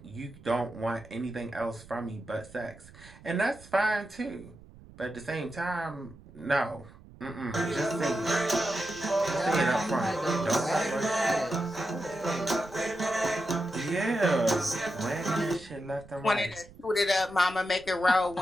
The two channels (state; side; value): noise; right; rumble, 21 dB below the sound